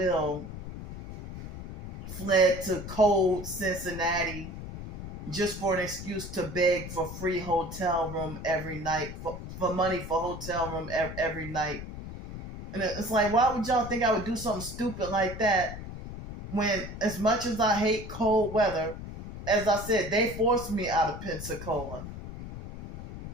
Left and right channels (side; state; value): left; noise; rumble, 10 dB below the sound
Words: fled to cold Cincinnati just for an excuse to beg for free hotel room every night, for money for hotel room every night. And it's like, why would y'all think I would do something stupid like that when, as much as I hate cold weather, as I said, they forced me out of Pensacola.